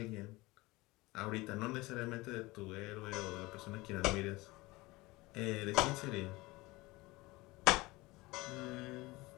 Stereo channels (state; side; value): quieter; right; 21.5 dB